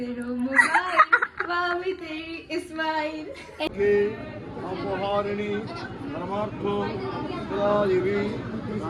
মোবাইল বাবি তেরি ইসমাইল অপহারিণী পরমার্থ দেবী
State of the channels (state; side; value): identical; both; correlation 1.00